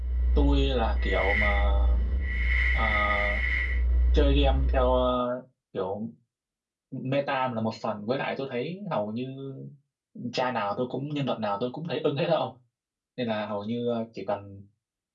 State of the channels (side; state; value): both; identical; correlation 1.00